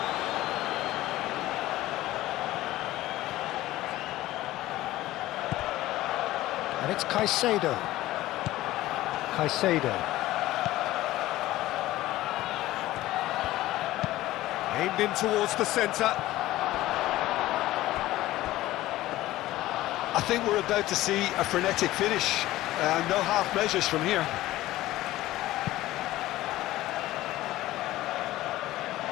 And it's Caicedo. Aimed in towards the centre. I think we're about to see a frenetic finish. No half measures from here.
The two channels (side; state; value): right; quieter; 16.2 dB